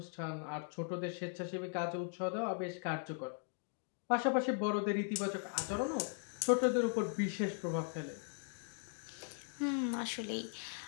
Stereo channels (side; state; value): right; silent; 52 dB below the other